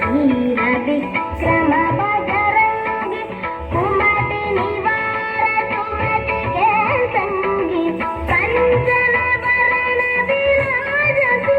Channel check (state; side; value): identical; both; correlation 1.00